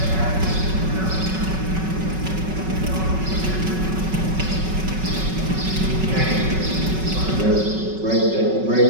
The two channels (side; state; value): left; late; 5.4 ms